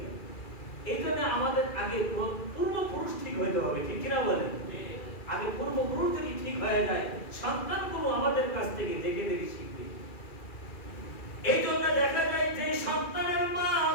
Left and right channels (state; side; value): late; right; 2.4 ms